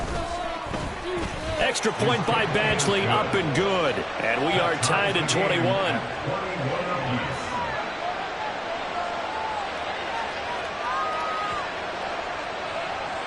Extra point by Badgley, up and good. And we are tied at 21.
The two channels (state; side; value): identical; both; correlation 1.00